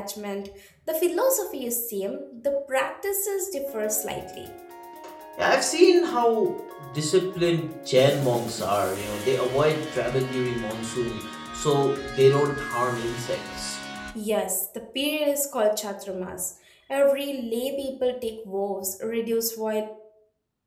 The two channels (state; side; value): identical; both; correlation 1.00